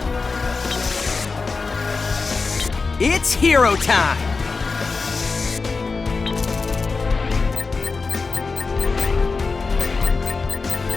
It's hero time!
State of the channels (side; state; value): right; quieter; 4.3 dB